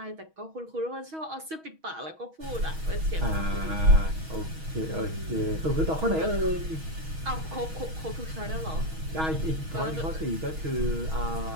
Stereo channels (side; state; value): left; late; 6.3 ms